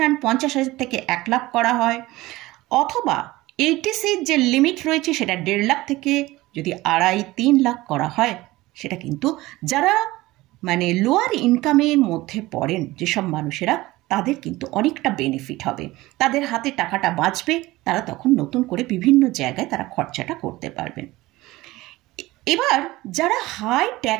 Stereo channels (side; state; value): left; quieter; 18.9 dB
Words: 50,000 থেকে 1 লাখ করা হয়, অথবা এইটিসির যে লিমিট রয়েছে সেটা 1.5 লাখ থেকে যদি 2.5-3 লাখ করা হয়, সেটা কিন্তু যারা মানে লোয়ার ইনকামের মধ্যে পড়েন যেসব মানুষেরা, তাদের কিন্তু অনেকটা বেনিফিট হবে, তাদের হাতে টাকাটা বাঁচবে, তারা তখন নতুন করে বিভিন্ন জায়গায় তারা খরচাটা করতে পারবেন। এবার যারা হাই